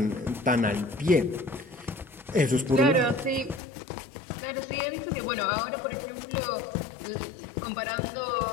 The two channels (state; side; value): drops out; right; at 3.6 s